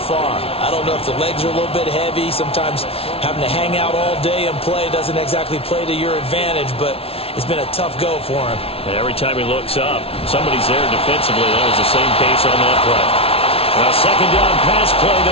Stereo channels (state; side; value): late; right; 0.28 ms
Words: I don't know if the legs are a little bit heavy. Sometimes having to hang out all day and play doesn't exactly play to your advantage, but it's been a tough go for him. And every time he looks up, somebody's there defensively. That was the same case on that play. Now, second down pass play